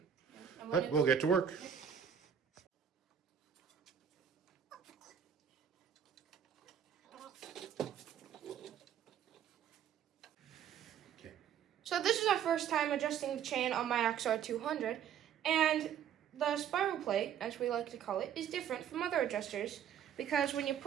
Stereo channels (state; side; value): quieter; left; 9.0 dB